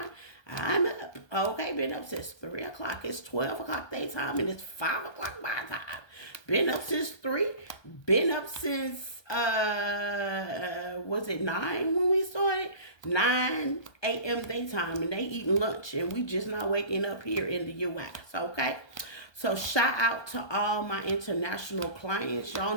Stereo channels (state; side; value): late; right; 1.2 ms